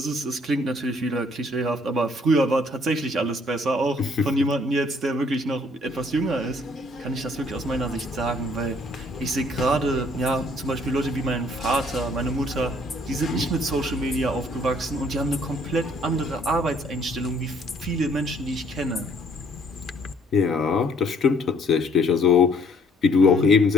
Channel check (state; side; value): normal; both; correlation 0.62